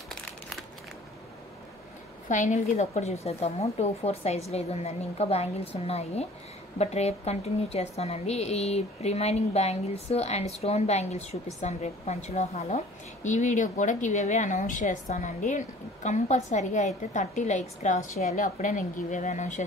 ఫైనల్గా ఇది ఒక్కటి చూసేద్దాము. 2-4 సైజులో ఇది ఉందండి. ఇంకా బ్యాంగిల్స్ ఉన్నాయి, బట్ రేపు కంటిన్యూ చేస్తానండి. ఈ remaining bangles and stone bangles చూపిస్తాను రేపు పంచలోహాలో. ఈ వీడియో కూడా గివ్ అవే అనౌన్స్ చేస్తానండి. కంపల్సరీగా అయితే 30 లైక్స్ క్రాస్ చేయాలి, అప్పుడే నేను గివ్ అవే అనౌన్స్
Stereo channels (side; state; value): both; normal; correlation 0.49